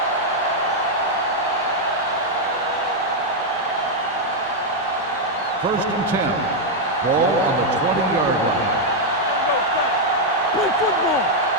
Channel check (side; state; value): both; normal; correlation -0.01